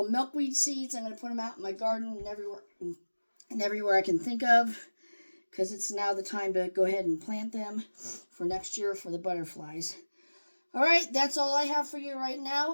milkweed seeds. I'm going to put them out in my garden and everywhere I can think of, because it's now the time to go ahead and plant them for next year for the butterflies. All right, that's all I have for you right now,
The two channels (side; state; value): both; inverted; correlation -1.00